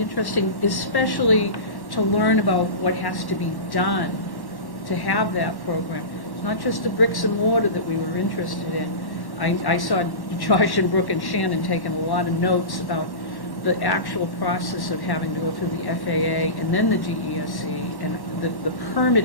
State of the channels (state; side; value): late; right; 1.1 ms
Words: especially to learn about what has to be done to have that program. It's not just the bricks and mortar that we were interested in. I saw Josh and Brooke and Shannon taking a lot of notes about the actual process of having to go through the FAA and then the DESE, and the